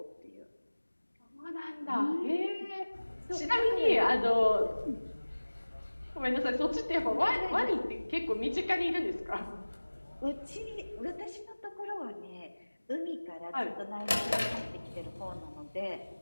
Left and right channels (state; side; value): inverted; both; correlation -1.00